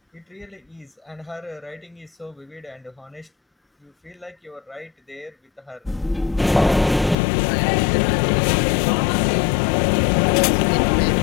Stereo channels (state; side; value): drops out; right; at 7.2 s